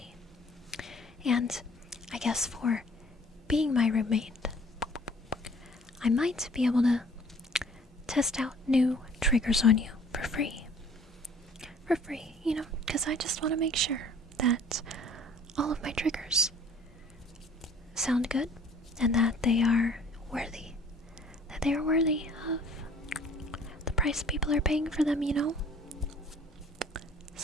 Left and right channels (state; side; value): normal; both; correlation 0.53